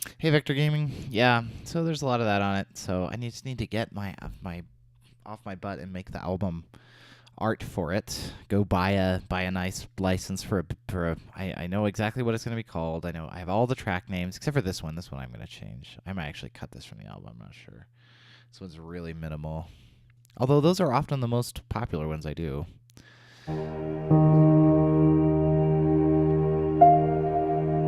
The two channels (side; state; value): both; identical; correlation 1.00